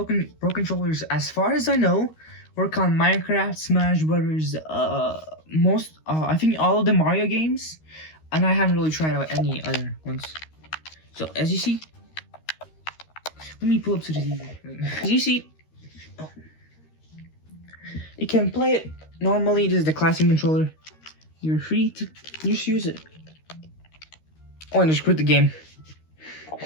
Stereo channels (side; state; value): right; late; 13 ms